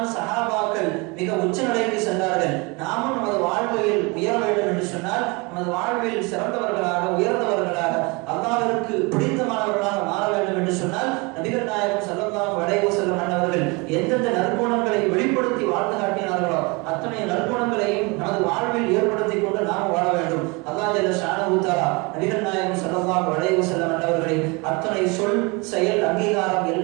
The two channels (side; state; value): left; quieter; 27.9 dB